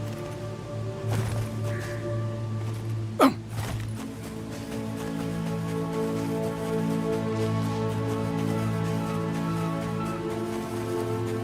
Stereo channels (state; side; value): identical; both; correlation 1.00